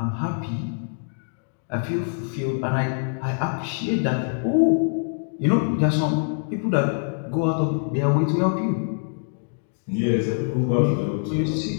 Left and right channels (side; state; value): right; silent; digital silence